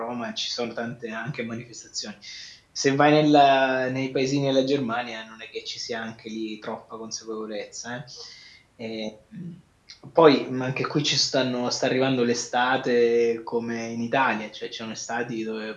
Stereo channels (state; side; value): identical; both; correlation 1.00